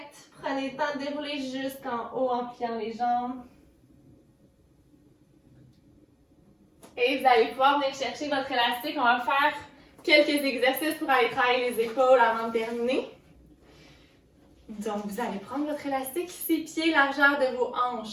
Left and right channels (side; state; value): both; identical; correlation 1.00